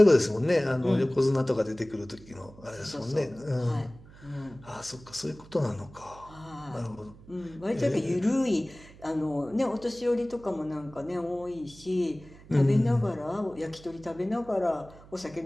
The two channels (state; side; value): noise; right; hum, 21 dB below the sound